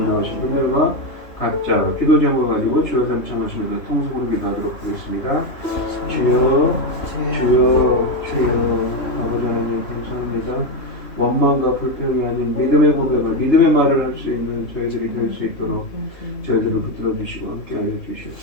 나오신 분들과 각자 기도 제목을 가지고 주여 삼창하시면서 통속으로 기도하도록 하겠습니다. 주여, 주여, 주여. 아버지 하나님 감사합니다. 원망과 불평이 아닌 믿음의 고백을, 믿음의 말을 할 수 있는 저희들이 될 수 있도록 저희들을 붙들어 주시고 함께하여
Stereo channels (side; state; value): right; late; 3.3 ms